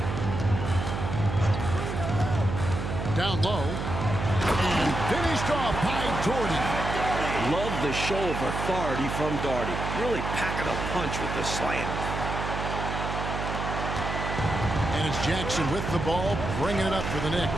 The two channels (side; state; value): right; noise; hum, 4 dB below the sound